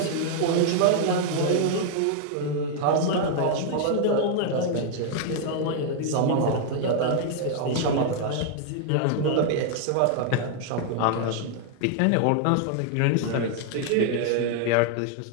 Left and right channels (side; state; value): both; different; correlation 0.00